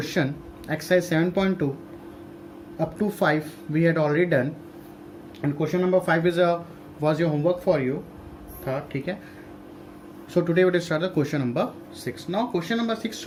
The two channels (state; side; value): identical; both; correlation 1.00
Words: exercise 7.2 up to 5 we had already done, and question number 5 was your homework for you था, ठीक है. So today we will start the question number 6. Now question number 6,